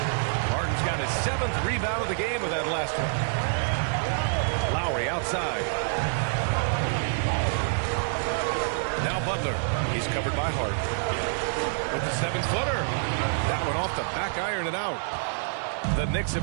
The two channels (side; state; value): left; silent; digital silence